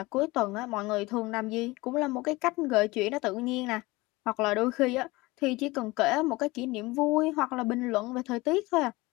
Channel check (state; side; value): quieter; right; 21.6 dB